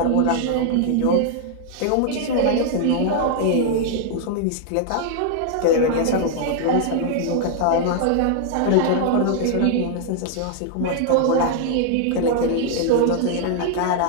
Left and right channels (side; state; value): both; different; correlation -0.01